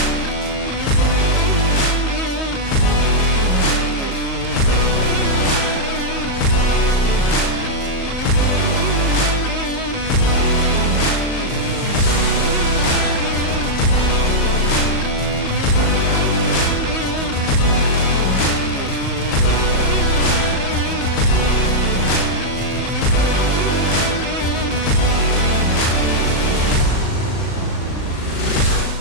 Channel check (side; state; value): right; late; 38 ms